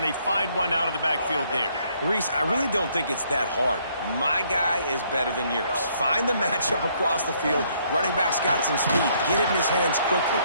they find one out of the backfield there. Reese, I really don't think it's that hard. My guy is better than yours. Find the matchup across the field. Running back's got some speed. Get it in his hands quickly.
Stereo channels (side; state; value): both; inverted; correlation -0.68